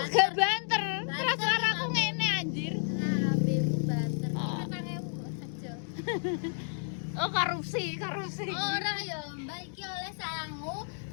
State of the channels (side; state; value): right; silent; digital silence